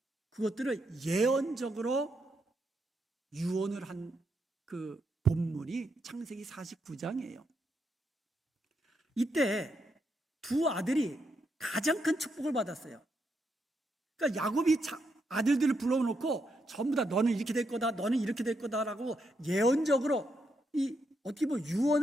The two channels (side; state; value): both; normal; correlation 0.80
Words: 그것들을 예언적으로 유언을 한 그 본문이 창세기 49장이에요. 이때 두 아들이 가장 큰 축복을 받았어요. 그러니까 야곱이 아들들을 불러놓고 전부 다 너는 이렇게 될 거다, 너는 이렇게 될 거다라고 예언적으로 어떻게 보면